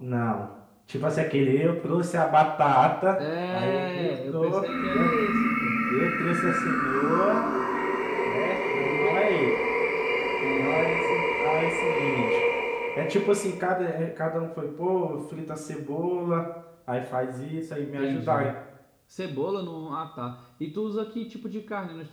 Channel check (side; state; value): both; identical; correlation 1.00